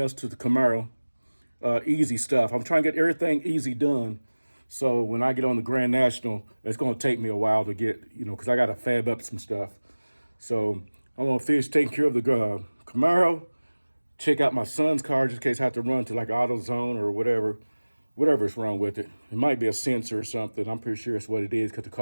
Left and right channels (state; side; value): inverted; both; correlation -1.00